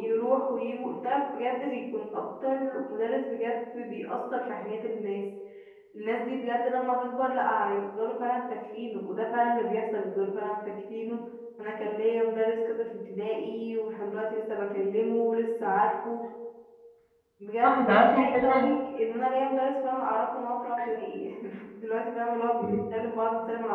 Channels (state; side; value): identical; both; correlation 1.00